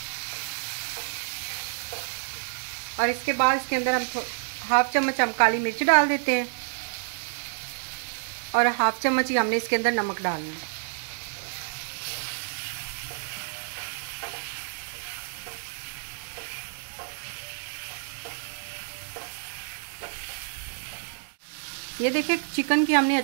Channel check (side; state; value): left; silent; digital silence